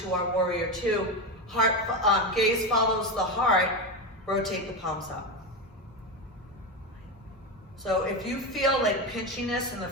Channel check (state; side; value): normal; both; correlation 0.16